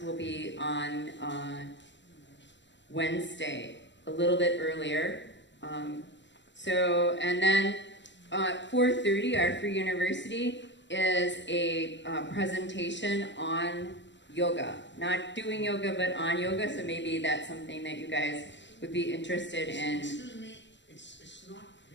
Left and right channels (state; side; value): late; right; 0.53 ms